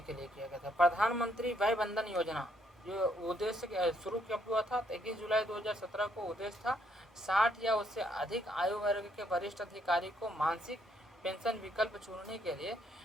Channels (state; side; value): normal; both; correlation 0.71